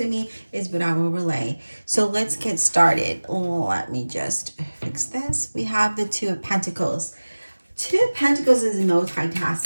me is what I will relay. So let's get started. Let me just fix this. We have the Two of Pentacles. Two of Pentacles is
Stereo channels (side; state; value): both; inverted; correlation -1.00